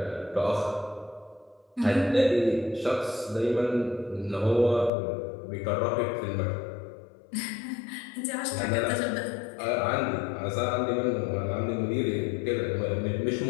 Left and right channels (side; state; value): right; drops out; at 4.9 s